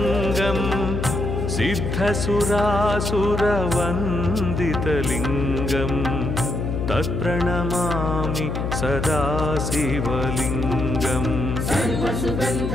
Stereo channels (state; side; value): noise; left; hum, 2 dB below the sound